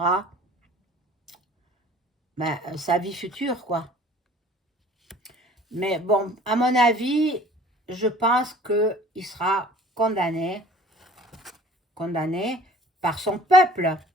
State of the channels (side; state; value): both; normal; correlation 0.49